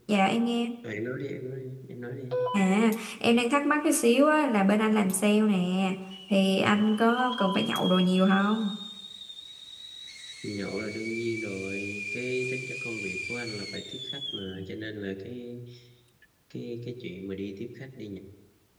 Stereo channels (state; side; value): identical; both; correlation 1.00